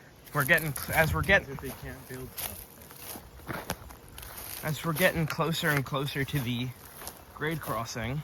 As we're getting closer and closer to the grade crossing,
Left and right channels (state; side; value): identical; both; correlation 1.00